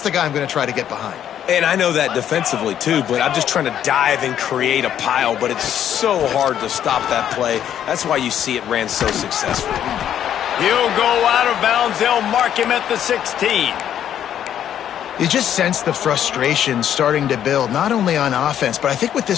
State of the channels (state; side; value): quieter; right; 10.1 dB